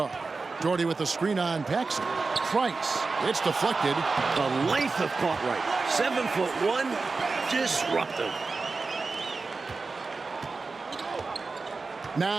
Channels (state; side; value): quieter; left; 4.1 dB